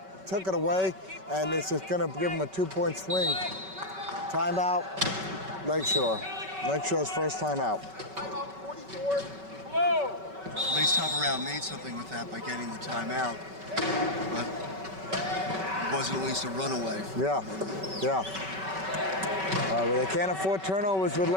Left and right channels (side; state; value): left; late; 5.3 ms